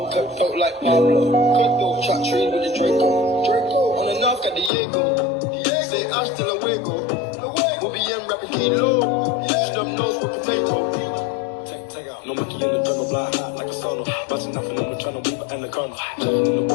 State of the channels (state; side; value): drops out; right; at 4.7 s